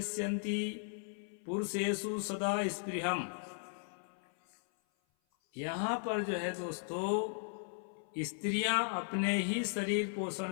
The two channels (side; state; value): right; silent; 53 dB below the other